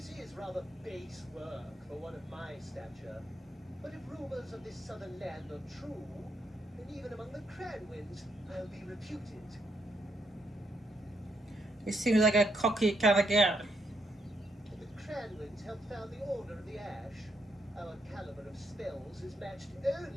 is rather base work for one of my stature, but if rumors of this southern land are true, then even among the Cranwins, I'll be reputed. He seems like a cocky kind of guy. The Cranwins helped found the Order of the Ash. Our caliber of spells is matched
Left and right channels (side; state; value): both; normal; correlation 0.77